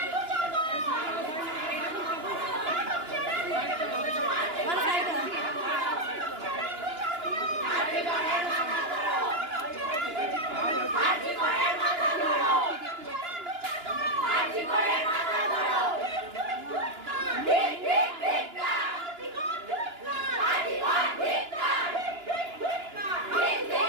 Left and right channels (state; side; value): late; left; 2.9 ms